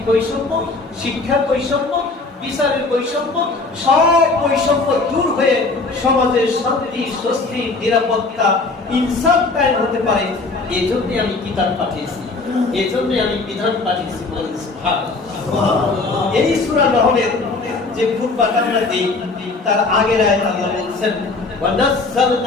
বৈষম্য, শিক্ষার বৈষম্য, বিচারের বৈষম্য, সব বৈষম্য দূর হয়ে সমাজের শান্তি, স্বস্তি, নিরাপত্তা, ইনসাফ কায়েম হতে পারে। এই জন্য আমি কিতাব পাঠিয়েছি, এই জন্য আমি বিধান পাঠিয়েছি। এই সূরা নহলের যে খুতবা আমরা দিই, তার আগের আয়াত আল্লাহ বলেছেন, ওয়া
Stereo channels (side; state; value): right; quieter; 3.7 dB